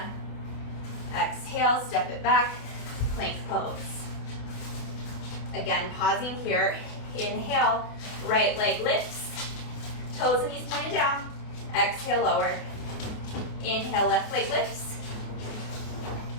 Exhale, step it back, plank pose. Again, pausing here. Inhale, right leg lifts, toes and knees pointed down. Exhale, lower. Inhale, left leg lifts.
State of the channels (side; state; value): right; late; 28 ms